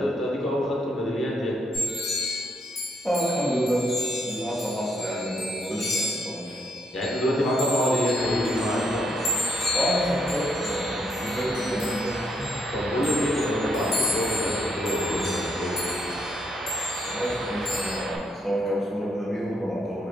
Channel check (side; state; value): both; normal; correlation 0.75